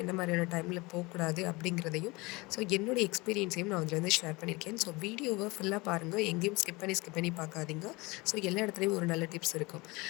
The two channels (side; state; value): right; quieter; 24.0 dB